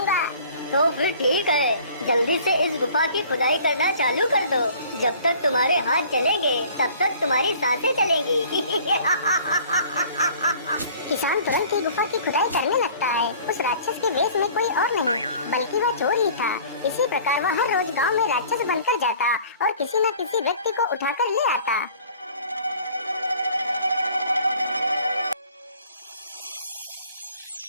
तो फिर ठीक है, जल्दी से इस गुफा की खुदाई करना चालू कर दो। जब तक तुम्हारे हाथ चलेंगे तब तक तुम्हारी सांसें चलेंगी। किसान तुरंत ही गुफा की खुदाई करने लगता है। उस राक्षस के वेश में कोई और नहीं बल्कि वह चोर ही था। इसी प्रकार वह हर रोज गांव में राक्षस बनकर जाता और किसी न किसी व्यक्ति को उठाकर ले आता।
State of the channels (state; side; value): inverted; both; correlation -0.50